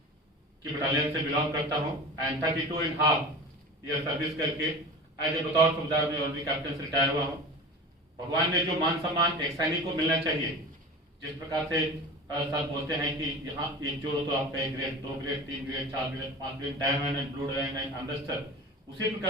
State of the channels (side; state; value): both; normal; correlation 0.34